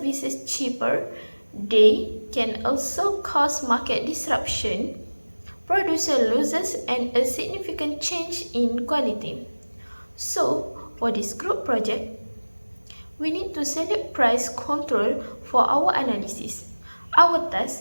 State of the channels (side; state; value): both; inverted; correlation -1.00